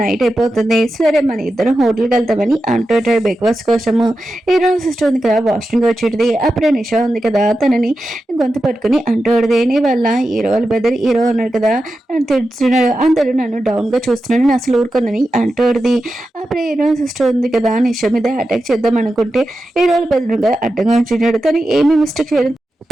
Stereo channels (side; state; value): both; normal; correlation 0.91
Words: నైట్ అయిపోతుంది, సరే మన ఇద్దరం హోటల్కి వెళ్తామని అంటూ ఉంటాడు బ్రేక్ఫాస్ట్ కోసము. హీరో సిస్టర్ ఉంది కదా వాష్రూమ్కి వచ్చేది. అప్పుడే నిషా ఉంది కదా తనని గొంతు పట్టుకుని అంటూడదే నీ వల్ల హీరో వాళ్ళ బెదర్ హీరో ఉన్నాడు కదా నన్ను తిడుతున్నాడు, అందరూ నన్ను డౌన్గా చూస్తున్నాడు, నేను అసలు ఊరుకుందని అంటూడది. అప్పుడే హీరో సిస్టర్ ఉంది కదా నిషా మీద అటాక్ చేద్దాం అనుకుంటే హీరో వాళ్ళ బెదర్ అడ్డంగా ఉంటున్నాడు. తను ఏమి మిస్టేక్ చేయడం